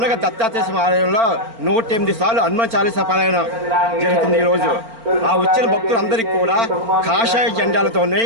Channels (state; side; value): late; left; 4.4 ms